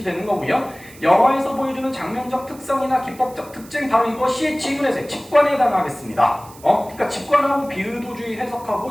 거고요. 영화에서 보여주는 장면적 특성이나 기법적 특징 바로 이것이 지문에서의 직관에 해당하겠습니다. 그러니까 직관하고 비의도주의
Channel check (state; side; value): noise; right; hiss, 22 dB below the sound